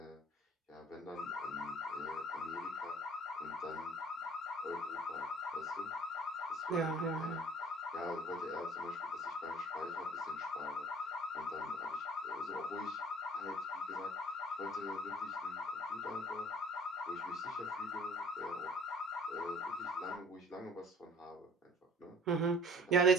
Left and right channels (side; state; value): both; normal; correlation 0.51